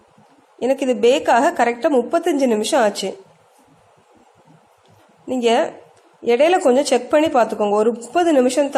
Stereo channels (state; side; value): identical; both; correlation 1.00